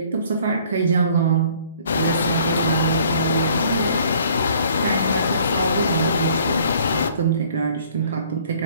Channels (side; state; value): both; inverted; correlation -0.57